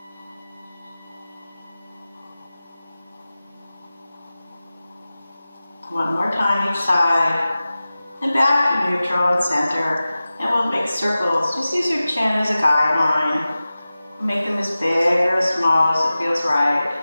One more time each side. And back to neutral and center. And we'll make circles. Just use your chin as a guideline. Make them as big or as small as it feels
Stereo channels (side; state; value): both; inverted; correlation -0.95